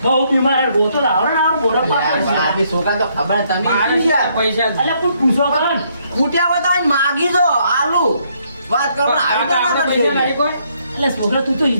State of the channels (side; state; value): both; inverted; correlation -0.71